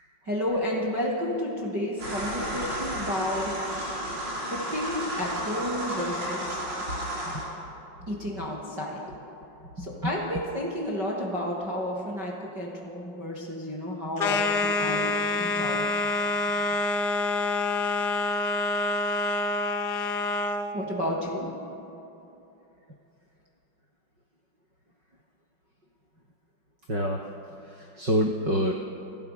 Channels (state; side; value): late; left; 5.4 ms